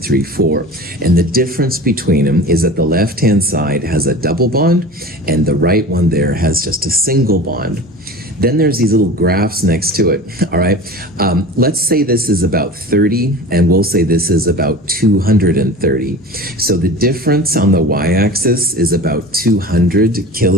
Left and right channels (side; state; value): both; normal; correlation 0.36